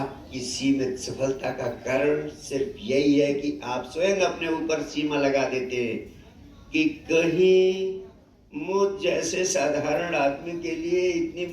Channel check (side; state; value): both; identical; correlation 1.00